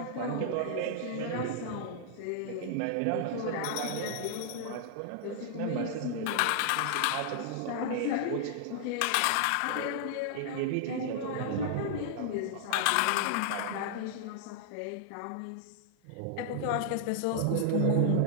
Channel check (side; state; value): both; different; correlation -0.01